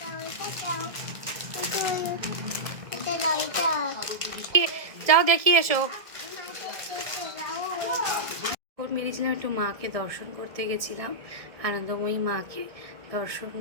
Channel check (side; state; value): left; late; 1.7 ms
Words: যাও দেখিয়ে এসো। বেরিয়েছিলাম একটু, মাকে দর্শন করতে গেছিলাম, আনন্দময়ী মাকে দর্শন